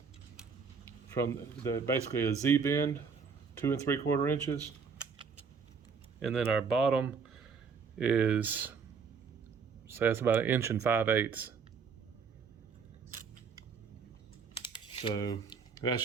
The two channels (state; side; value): quieter; left; 5.7 dB